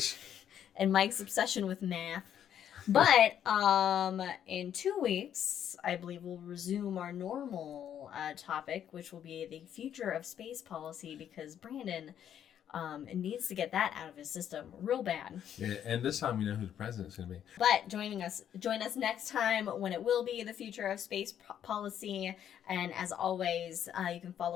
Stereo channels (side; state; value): right; quieter; 9.7 dB